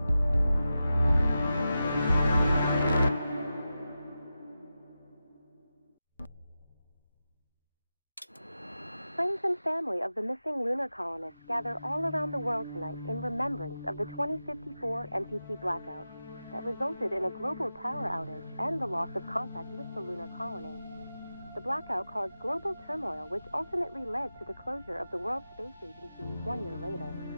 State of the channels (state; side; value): inverted; both; correlation -0.92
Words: Friends and family of the missing lunar colonists gather all around the world tonight in remembrance of the 2054 MPT blackout that resulted in a global power outage and the loss of contact with the lunar colony. The blackout caused global turmoil, which ultimately led to the closure of the World Space Agency 1 year later.